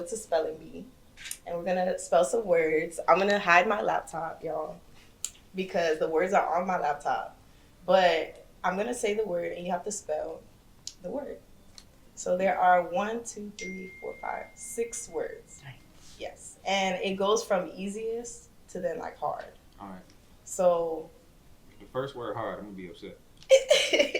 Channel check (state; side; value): identical; both; correlation 1.00